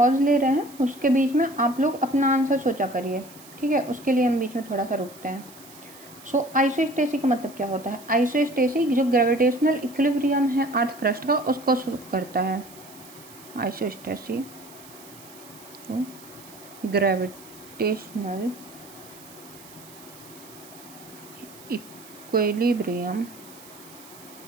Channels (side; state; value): right; noise; hiss, 20 dB below the sound